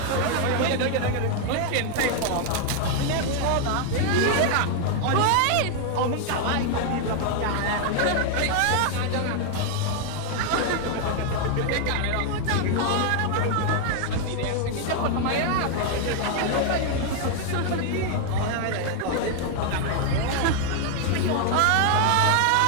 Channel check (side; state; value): both; different; correlation 0.00